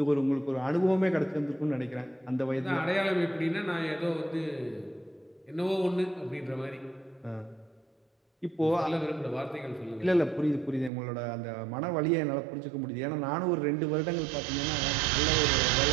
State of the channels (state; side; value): drops out; left; at 10.9 s